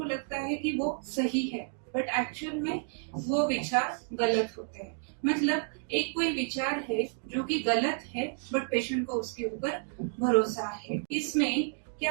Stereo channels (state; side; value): silent; left; 57 dB below the other